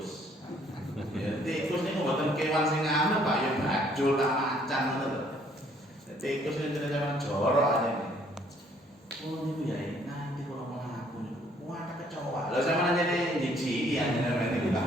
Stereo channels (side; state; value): both; normal; correlation 0.63